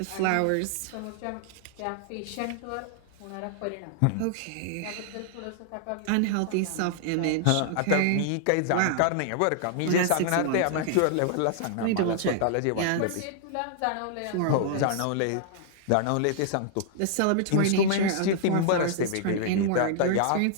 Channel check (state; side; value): different; both; correlation -0.01